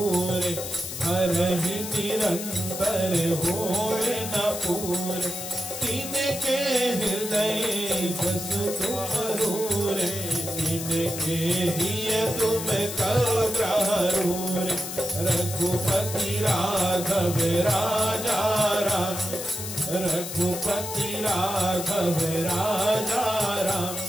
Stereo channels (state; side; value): noise; left; hiss, 7 dB below the sound